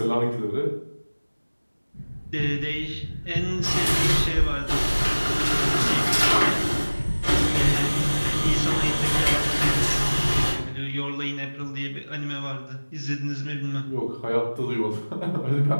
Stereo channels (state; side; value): inverted; both; correlation -1.00